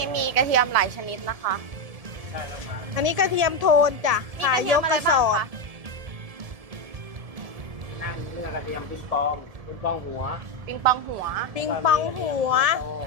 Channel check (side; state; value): left; late; 1.7 ms